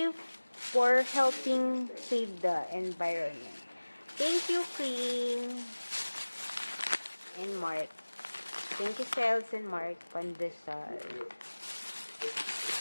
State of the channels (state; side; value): inverted; both; correlation -1.00